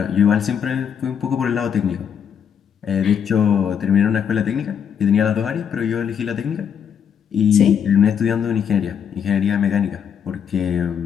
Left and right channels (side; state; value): right; quieter; 7.9 dB